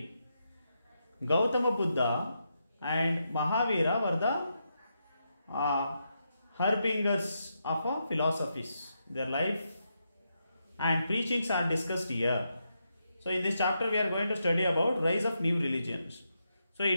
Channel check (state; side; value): inverted; both; correlation -0.83